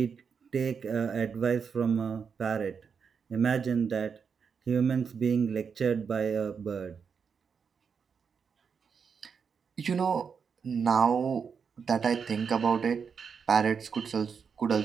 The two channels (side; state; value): left; quieter; 6.3 dB